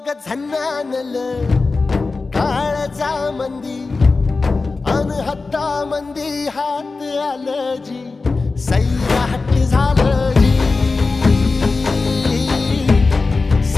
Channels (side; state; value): right; quieter; 3.9 dB